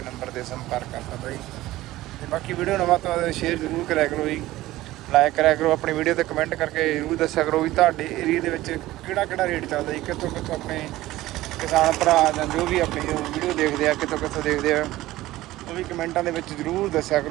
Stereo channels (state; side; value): quieter; left; 16.6 dB